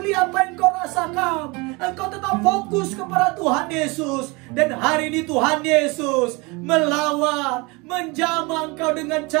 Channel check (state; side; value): quieter; left; 26.4 dB